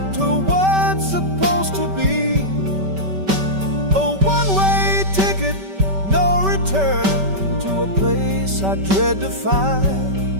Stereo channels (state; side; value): late; left; 5.2 ms